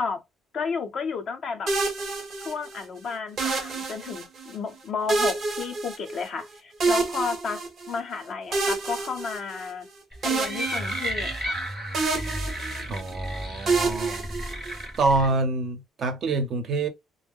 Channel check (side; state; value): both; normal; correlation 0.63